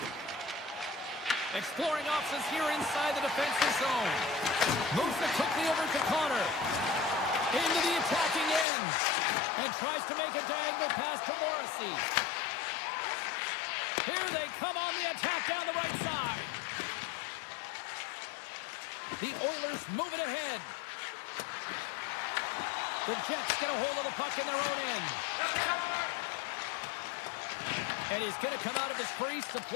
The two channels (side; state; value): right; drops out; at 8.7 s